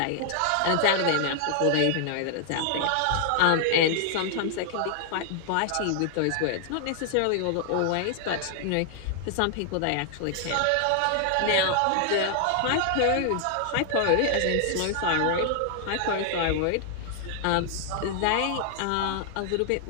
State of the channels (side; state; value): both; different; correlation 0.00